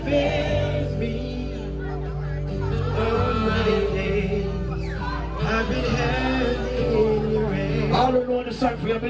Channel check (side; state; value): both; identical; correlation 1.00